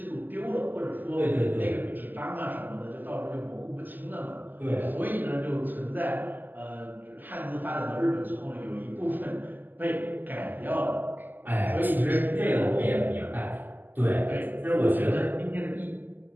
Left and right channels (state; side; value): late; left; 0.087 ms